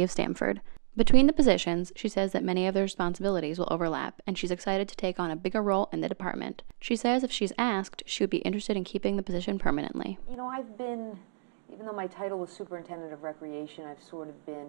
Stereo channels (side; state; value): left; silent; digital silence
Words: of Stamford. Between the positions, she says that many of their responsibilities will overlap, and she's excited to take on a bigger role in the department. She says if she's asked, she would be interested in keeping the position permanently. You know, even though my title was superintendent of recreation, I've sort of